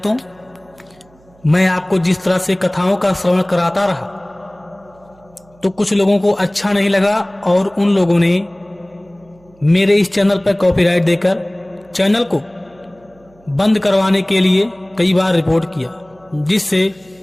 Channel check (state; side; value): noise; right; hum, 30 dB below the sound